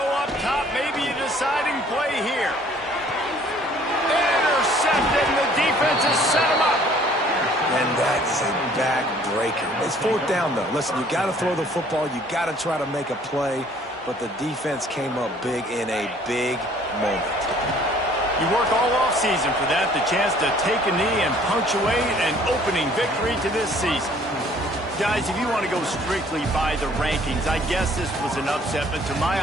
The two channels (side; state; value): both; normal; correlation 0.57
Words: up top, maybe a deciding play here. Intercepted, and the defense has set him up. And that is a back-breaker. It's fourth down, though. Listen, you got to throw the football. You got to try to make a play. But the defense came up big in a big moment. You work all offseason for that, the chance to take a knee and punctuate an opening victory to this season. Guys, if you want to go strictly by the rankings, I guess this was an upset, but to my